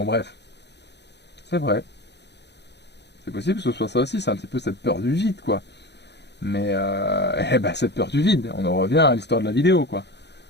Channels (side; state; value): right; late; 0.50 ms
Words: bref, c'est vrai, c'est possible que ce soit ça aussi, c'est un petit peu cette peur du vide quoi. Mais eh ben, cette peur du vide, on en revient à l'histoire de la vidéo quoi.